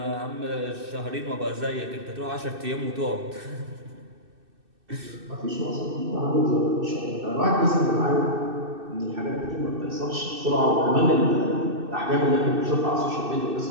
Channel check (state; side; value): late; left; 2.6 ms